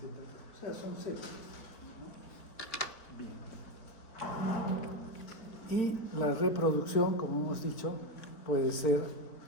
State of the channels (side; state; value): right; late; 4.4 ms